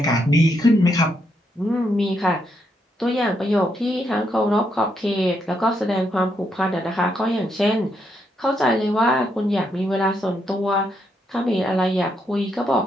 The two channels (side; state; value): both; normal; correlation 0.78